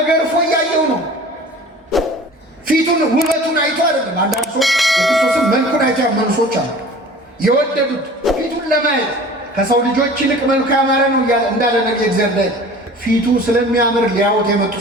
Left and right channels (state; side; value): normal; both; correlation 0.43